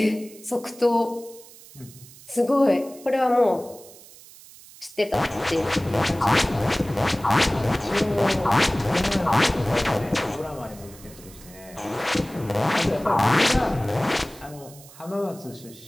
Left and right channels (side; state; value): right; noise; hiss, 21 dB below the sound